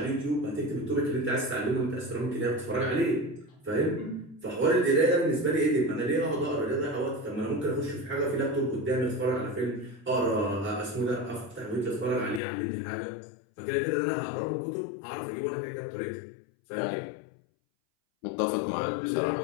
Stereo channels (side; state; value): right; drops out; at 12.4 s